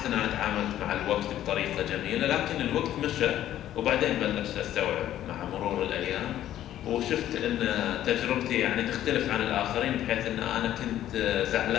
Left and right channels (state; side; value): quieter; right; 12.2 dB